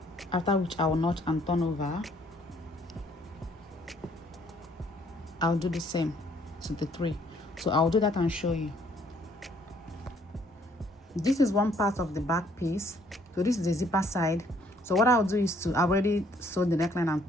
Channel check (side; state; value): both; normal; correlation 0.64